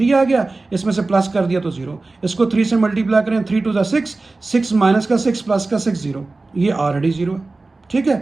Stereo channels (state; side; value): quieter; left; 3.4 dB